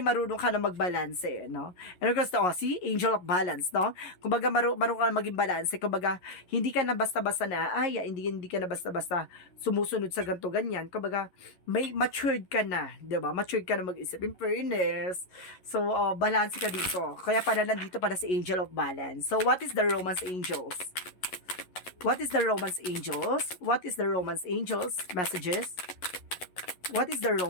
marunong ka na magbalanse, no? And of course, see? Angel of Balance, no? Kumbaga, marunong ka na maging balanse. Kumbaga, hindi ka na basta-basta na, hindi ka na basta-basta sumusunod sa ganito, ganyan. Kumbaga, may matured ka na, di ba? Matured ka na mag-isip. In fairness. So, balance ka dito. Kaya pala nandito para si Angel of Balance. So, what is the Romance Angels? What is the Romance Angels? What is the Romance Angels messages? What is the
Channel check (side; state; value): right; late; 11 ms